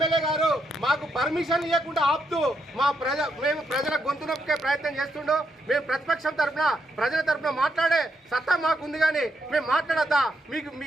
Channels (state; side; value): normal; both; correlation 0.79